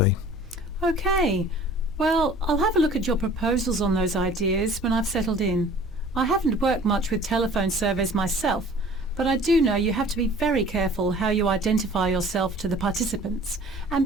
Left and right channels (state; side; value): normal; both; correlation 0.48